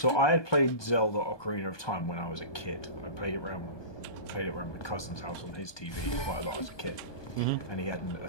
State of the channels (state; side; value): late; right; 1.2 ms